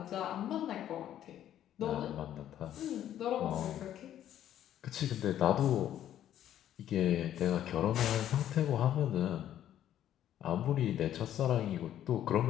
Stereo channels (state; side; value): quieter; right; 11.3 dB